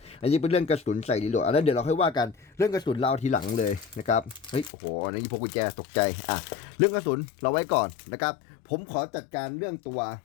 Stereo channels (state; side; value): drops out; right; at 4.7 s